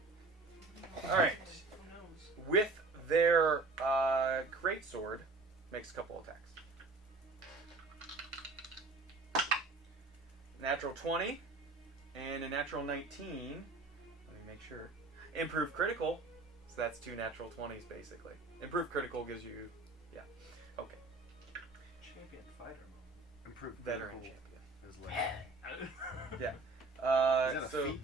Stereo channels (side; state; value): left; quieter; 3.6 dB